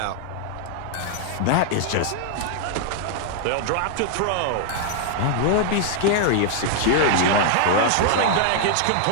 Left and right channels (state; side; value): different; both; correlation 0.00